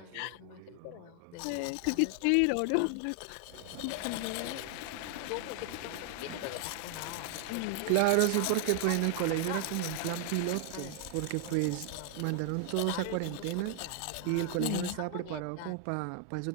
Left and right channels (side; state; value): both; different; correlation 0.00